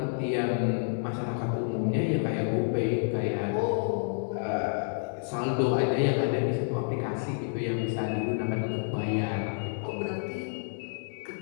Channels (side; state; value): right; silent; digital silence